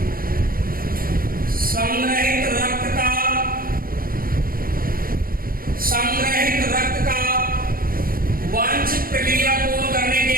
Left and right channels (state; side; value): late; left; 0.42 ms